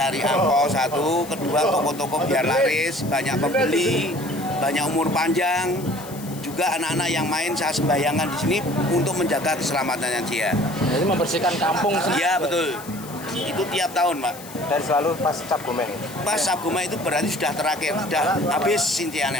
angpau satu, kedua toko-toko biar laris, banyak pembeli, banyak umur panjang. Juga anak-anak yang main saya sembahyangkan di sini untuk menjaga keselamatannya dia. Jadi membersihkan kampung sendiri. Iya betul. Itu tiap tahun, Pak. Dan selalu pas Cap Gomeh. Pas Cap Gomeh itu berarti sudah terakhir, sudah habis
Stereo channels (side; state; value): left; noise; hiss, 16 dB below the sound